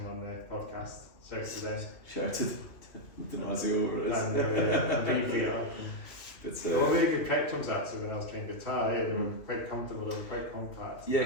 on the podcast. Shout to them. Shout out to Damasio over it. And Green Theatre. It's really good Pretchams actually when I was playing guitar. Yeah, they were quite comfortable. They were quite compact. yeah,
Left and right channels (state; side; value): late; right; 2.7 ms